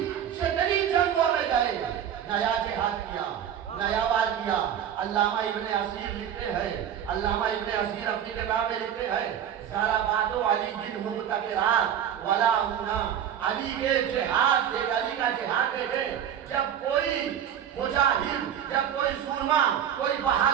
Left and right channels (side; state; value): left; quieter; 9.4 dB